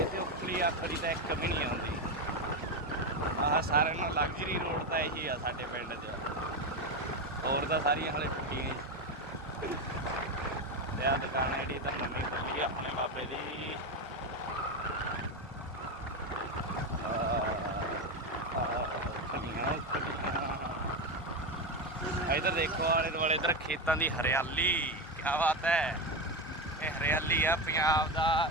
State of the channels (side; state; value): both; normal; correlation 0.14